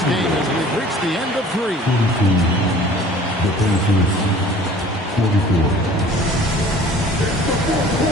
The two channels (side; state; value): both; normal; correlation 0.48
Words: game as we've reached the end of three. The Pacers, 44.